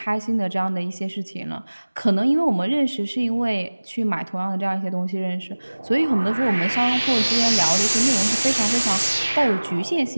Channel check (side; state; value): both; inverted; correlation -1.00